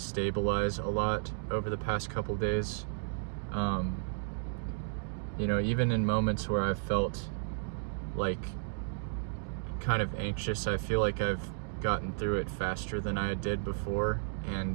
a lot over the past couple days. Even in moments where I've felt like kind of anxious, I feel like I've gotten through it faster than I did before,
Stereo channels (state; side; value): silent; left; digital silence